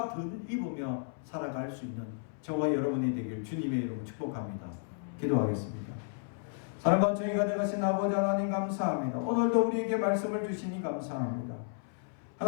덧입으며 살아갈 수 있는 저와 여러분이 되길 주님의 이름으로 축복합니다. 기도하겠습니다. 사랑과 정의 가득하신 아버지 하나님 감사합니다. 오늘도 우리에게 말씀을 주시니 감사합니다.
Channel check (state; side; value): silent; right; 56 dB below the other